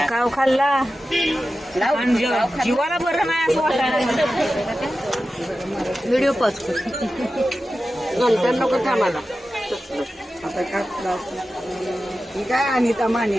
काव खाल्ला जीवाला बरं नाही असं वाटायला. व्हिडिओ पॉज कर. नंतर नको थांबाला. ही काय अनिता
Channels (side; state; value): both; normal; correlation 0.93